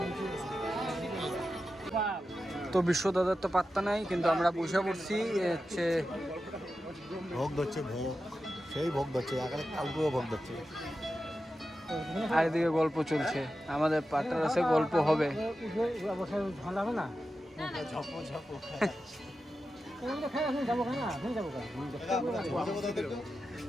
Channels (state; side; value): normal; both; correlation 0.91